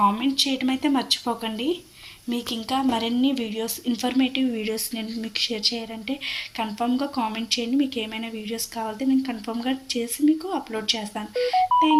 కామెంట్ చేయడం అయితే మర్చిపోకండి. మీకు ఇంకా మరిన్ని వీడియోస్, ఇన్ఫర్మేటివ్ వీడియోస్ నేను మీకు షేర్ చేయాలంటే కన్ఫామ్గా కామెంట్ చేయండి. మీకు ఏమైనా వీడియోస్ కావాలంటే నేను కన్ఫామ్గా చేసి మీకు అప్లోడ్ చేస్తాను.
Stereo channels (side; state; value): both; identical; correlation 1.00